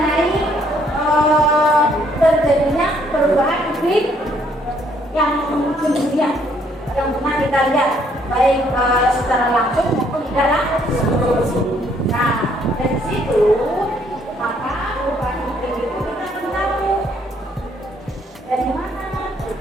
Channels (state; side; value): normal; both; correlation 0.67